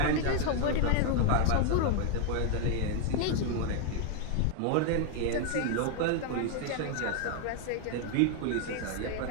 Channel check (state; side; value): different; both; correlation 0.01